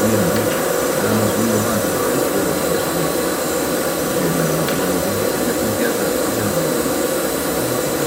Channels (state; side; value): identical; both; correlation 1.00